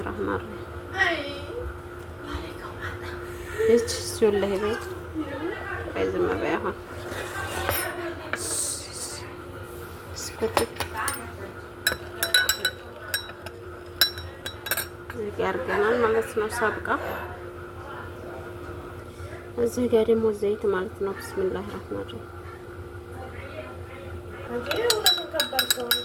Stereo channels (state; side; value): identical; both; correlation 1.00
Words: ረህማን ረሂም እቺ ሱለህ ቤት በዝም በይ አሁን ስኩት እዚህ ጋር አድርገናል ማለት ነው። ሰብቃ እዚህ ጋር ደግሞ ዘይት ማለት ነው። ቢስሚላህ ረህማን ረሂም